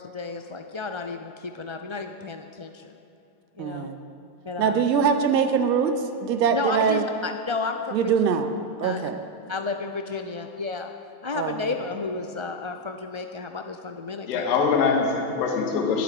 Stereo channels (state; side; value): late; left; 1.4 ms